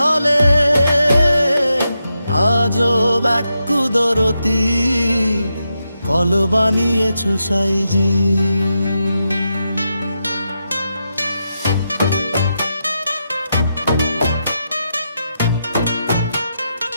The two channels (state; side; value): inverted; both; correlation -0.86